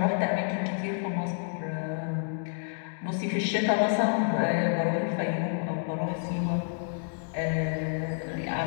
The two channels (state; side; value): silent; right; digital silence